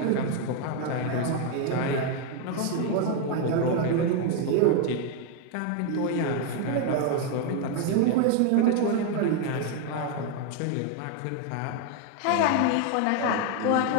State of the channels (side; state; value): both; different; correlation 0.01